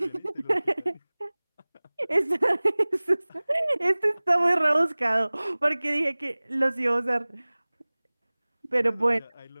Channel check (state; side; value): inverted; both; correlation -1.00